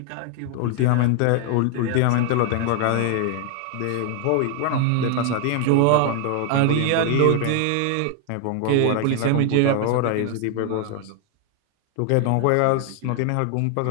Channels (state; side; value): different; both; correlation 0.00